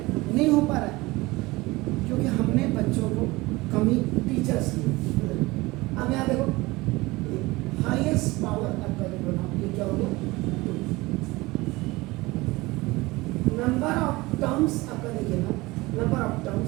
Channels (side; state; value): left; quieter; 21.3 dB